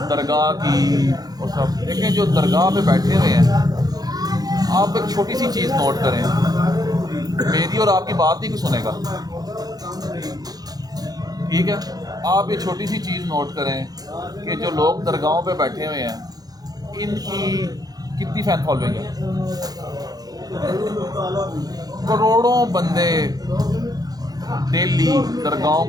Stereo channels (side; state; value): left; late; 0.19 ms